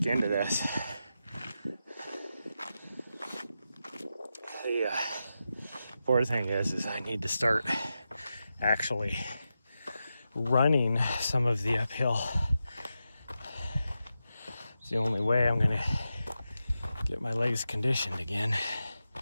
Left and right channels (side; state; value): both; inverted; correlation -0.89